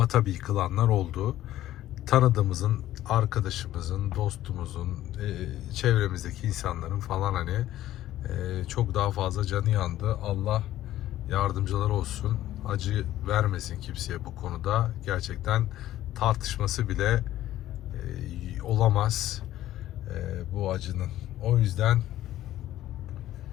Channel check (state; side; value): quieter; right; 13.8 dB